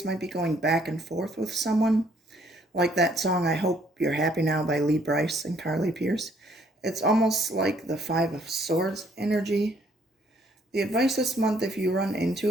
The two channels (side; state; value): both; normal; correlation 0.65